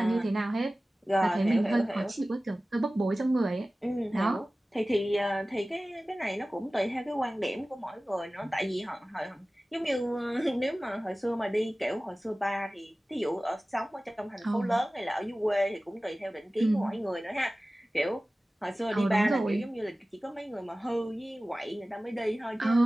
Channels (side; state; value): both; normal; correlation 0.97